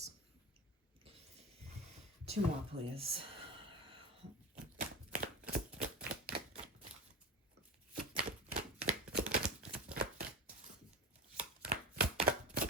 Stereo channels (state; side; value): normal; both; correlation 0.24